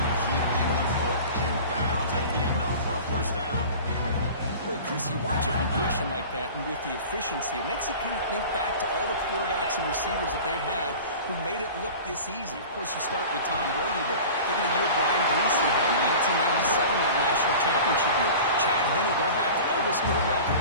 keeping the foot in bounds. That'll be enough for a first down. Well, Chris, you watch a completion like that, and with the efficiency, it makes you kind of think back to all the quarterbacks and receivers that they've had who made it look this easy. Of course, you start with Tom Brady, but think of the year Brian Greasy had in 1997, that national championship year. Chad Henne going back to Elvis Grbac and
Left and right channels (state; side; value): inverted; both; correlation -0.38